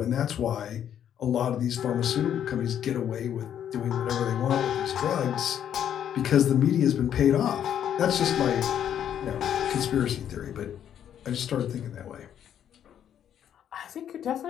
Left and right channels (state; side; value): quieter; right; 9.7 dB